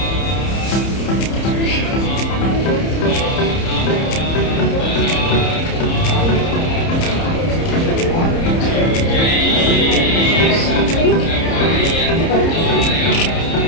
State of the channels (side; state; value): right; late; 30 ms